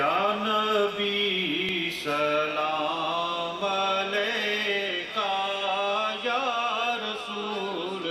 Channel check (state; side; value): identical; both; correlation 1.00